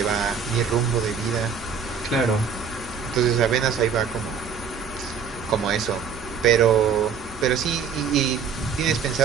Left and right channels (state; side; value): quieter; left; 6.5 dB